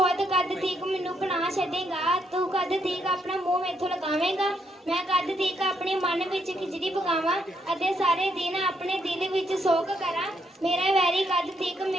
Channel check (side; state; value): both; normal; correlation 0.75